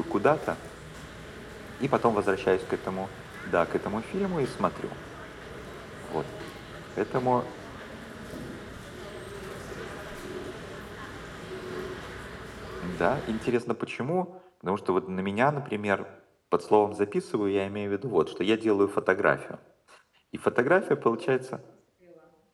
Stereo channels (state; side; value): identical; both; correlation 1.00